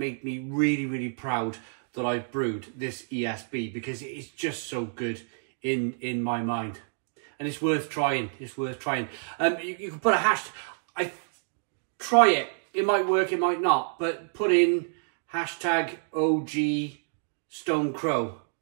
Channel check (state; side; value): silent; left; digital silence